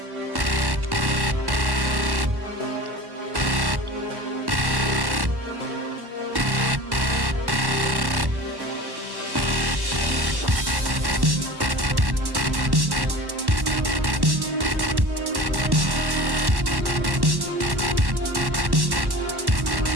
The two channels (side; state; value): left; late; 1.1 ms